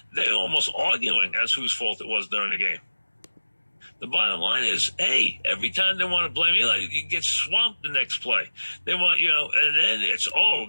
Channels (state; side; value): inverted; both; correlation -1.00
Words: they're almost arguing as whose fault it was during the game. The bottom line is, hey, every time they want to blame Eli, you get swamped the next play. They want, and then it's,